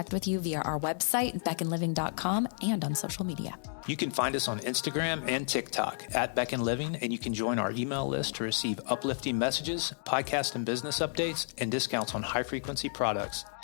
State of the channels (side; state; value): right; silent; digital silence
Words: with you via our website, beckonliving.com, and on social media. You can find us on Instagram and TikTok at Beck and Living, and you can join our email list to receive uplifting messages, podcast and business updates, and discounts on high-frequency products